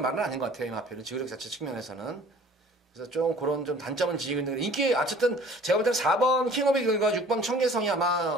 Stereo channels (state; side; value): normal; both; correlation 0.50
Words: 아닌 것 같아요. 이 마필은 지구력 자체 측면에서는. 그래서 좀 그런 좀 단점은 지니고 있는 인기 어쨌든 제가 볼 때는 4번 킹오브 이글과 6번 천계성이